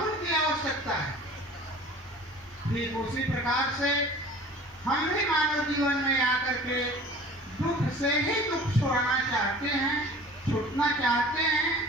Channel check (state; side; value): normal; both; correlation 0.45